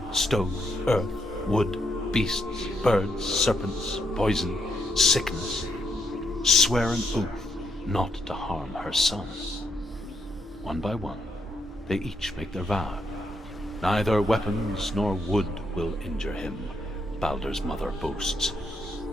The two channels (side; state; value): both; normal; correlation 0.77